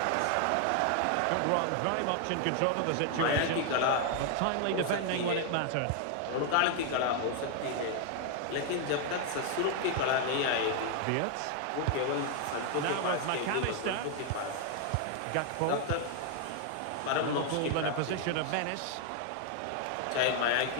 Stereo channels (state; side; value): different; both; correlation 0.00